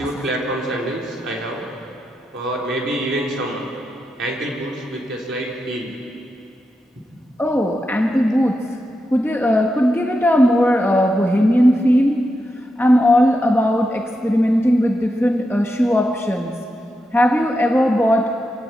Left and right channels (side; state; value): both; normal; correlation 0.87